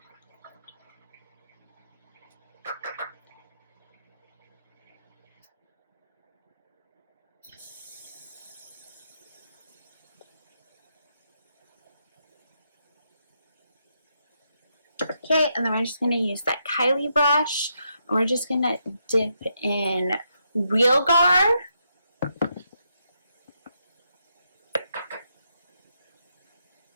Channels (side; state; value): both; inverted; correlation -0.80